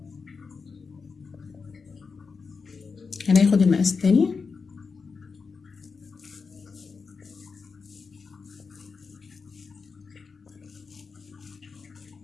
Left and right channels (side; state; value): right; quieter; 5.0 dB